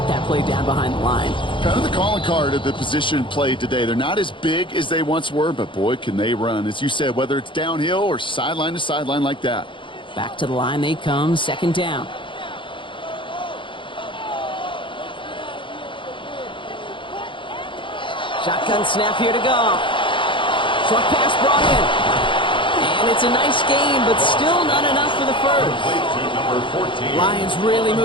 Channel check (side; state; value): right; late; 0.24 ms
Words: that play down behind the line. Kind of the calling card of the position played today. They're not as big as they once were, but boy, can they run. As you said, whether it's downhill or sideline to sideline like that. Back to the line they come, second down. Shotgun snap here to go. Short pass brought in. And it's a nice game, but still not enough for the first. Lions really